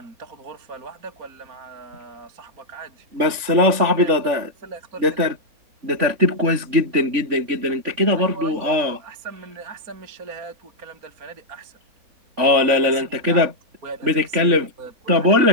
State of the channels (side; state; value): left; late; 3.5 ms